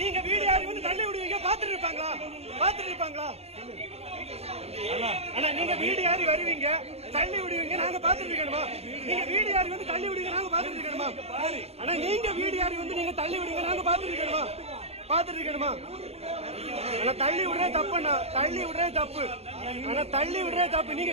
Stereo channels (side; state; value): left; late; 0.30 ms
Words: வீடு யாரு வந்து தள்ளி விடுவீங்க பாத்துட்டு இருப்பாங்களா? ஆனா நீங்க வீடு யாரு வருவீங்க தள்ளி விடுவீங்க நாங்க பாத்துட்டு இருக்கணுமா? நீங்க வீடு யாரு வந்து தள்ளி விடுவீங்க நாங்க பாத்துட்டு இருக்கணுமா? ஆனா நீங்க வீடு யாரு வந்து நீங்க தள்ளி விடுவீங்க நாங்க பாத்துட்டு இருக்கணுமா? ஆனா தள்ளி விடுறது தப்புண்ணா, தள்ளி விடுறது தப்பு. ஆனா தள்ளி விடுறது தப்பு.